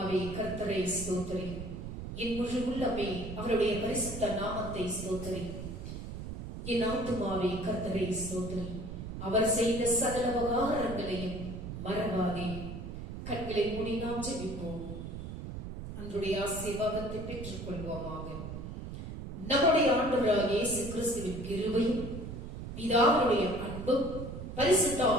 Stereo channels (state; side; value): noise; right; rumble, 8 dB below the sound